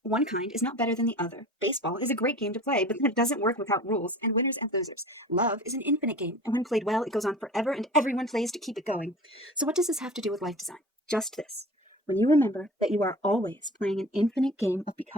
One kind is not better than the other. Baseball is a great game to play, but it doesn't work without rules and winners and losers. Love is an infinite game, and when played well, it goes on forever and everyone plays to keep it going. So what does this have to do with life design? Just this. When you remember that you are always playing an infinite game of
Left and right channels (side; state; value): both; normal; correlation 0.39